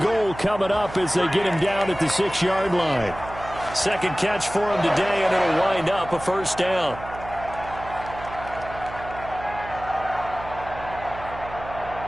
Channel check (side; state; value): right; noise; hum, 13 dB below the sound